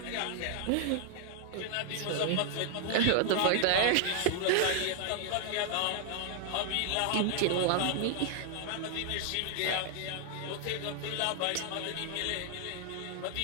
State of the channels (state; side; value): different; both; correlation 0.00